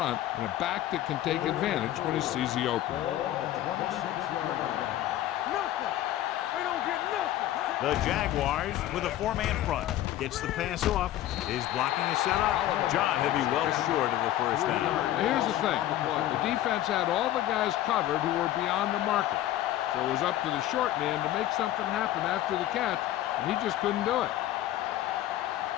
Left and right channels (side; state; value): right; quieter; 13.5 dB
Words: and a back that can take advantage when he sees the opening. Ball on the 26-yard line. Nothing. They don't get nothing. The Jaguars with a 4-man front. Gets the pass off. Is blocking is set up. John, he'll be well short of the first down. Now, here's the thing. The defense had all the guys covered who were beyond the marker. So it was up to the short man to make something happen after the catch, and he just couldn't do it.